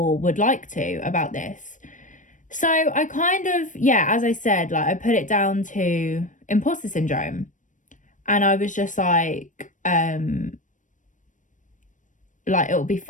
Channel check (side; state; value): right; late; 0.37 ms